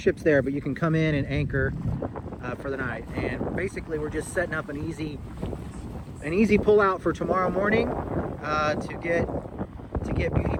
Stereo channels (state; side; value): identical; both; correlation 1.00